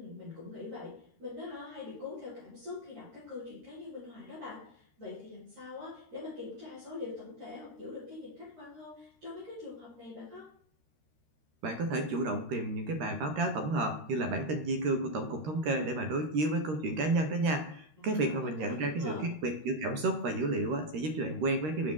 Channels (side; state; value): left; late; 13 ms